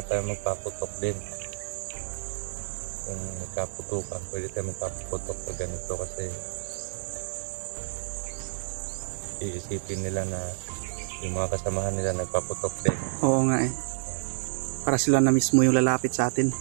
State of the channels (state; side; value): silent; left; digital silence